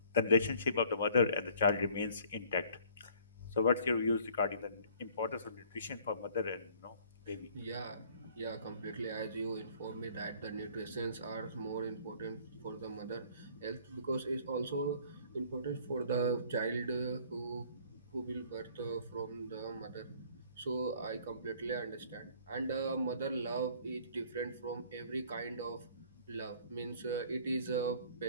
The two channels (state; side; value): inverted; both; correlation -0.55